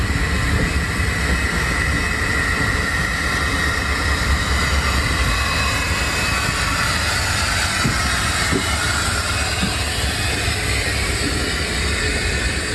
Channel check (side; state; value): both; identical; correlation 1.00